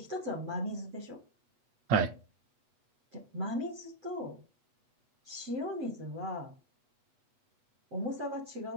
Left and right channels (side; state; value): left; late; 8.2 ms